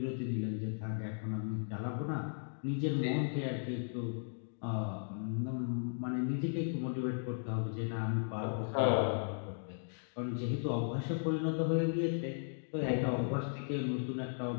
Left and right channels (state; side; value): silent; right; digital silence